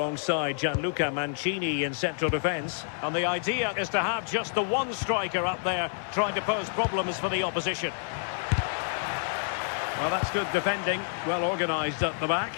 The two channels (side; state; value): right; silent; 59 dB below the other